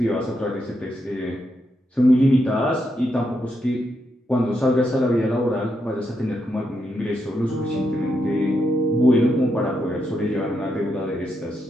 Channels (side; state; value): both; normal; correlation 0.82